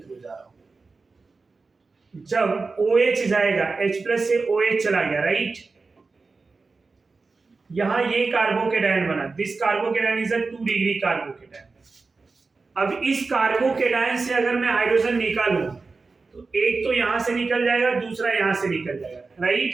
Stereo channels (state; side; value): quieter; left; 4.1 dB